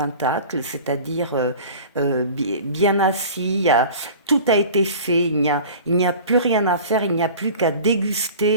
c'est-à-dire bien assis, tout a été fait, il n'y a plus rien à faire, il n'y a plus qu'à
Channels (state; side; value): inverted; both; correlation -0.40